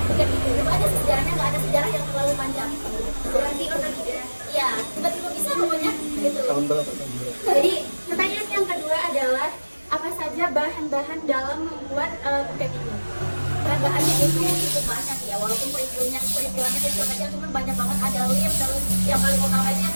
Buket itu. Itu ada sejarahnya, nggak ada sejarah yang terlalu panjang. Berarti order ya tiba-tiba bisa pokoknya gitu. Jadi pertanyaan yang kedua adalah apa saja bahan-bahan dalam membuat Buket ini? Bahan-bahannya itu cukup banyak ya, walaupun peristiwanya kecil kecil, cuma banyak banget. Ada lem, terus yang paling utama itu yang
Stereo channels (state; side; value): inverted; both; correlation -1.00